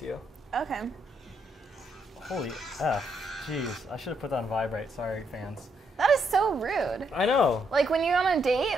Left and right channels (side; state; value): both; normal; correlation 0.76